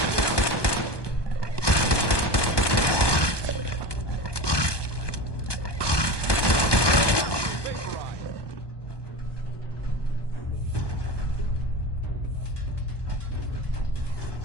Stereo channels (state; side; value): late; right; 1.2 ms